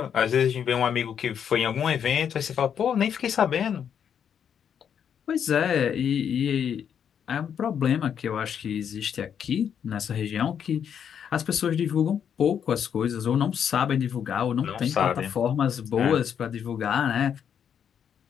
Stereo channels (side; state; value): right; quieter; 8.2 dB